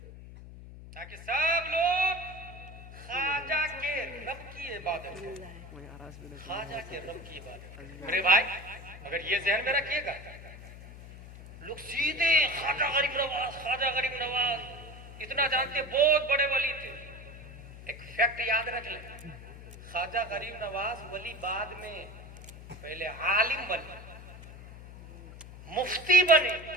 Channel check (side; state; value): left; noise; hum, 15 dB below the sound